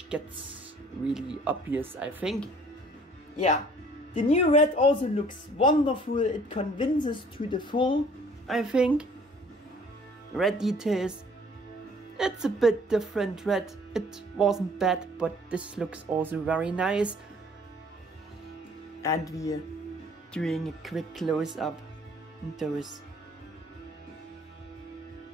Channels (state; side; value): normal; both; correlation 0.55